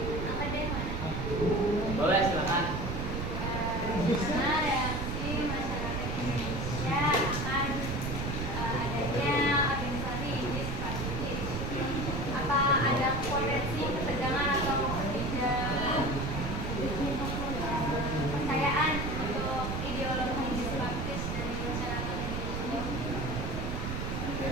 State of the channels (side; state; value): right; noise; rumble, 3 dB below the sound